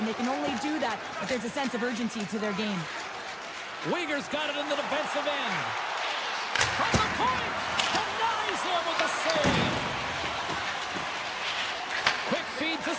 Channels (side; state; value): both; identical; correlation 1.00